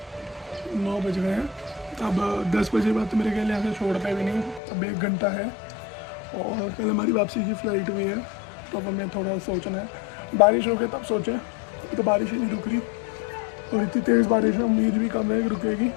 9 बज गए हैं। अब 10 बजे बाद तो मेरे ख्याल यहाँ से छोड़ते भी नहीं, अब 1 घंटा है और कल हमारी वापसी की फ़्लाइट भी है। तो अब हमें थोड़ा सोचना है, बारिश हो गई तब सोचें, तो बारिश ही नहीं रुक रही और इतनी तेज़ बारिश है, उम्मीद भी कम है कि रुकेगी।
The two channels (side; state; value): right; drops out; at 4.6 s